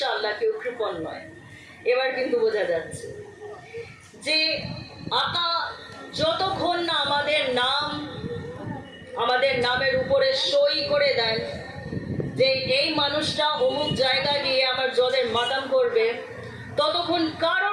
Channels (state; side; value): identical; both; correlation 1.00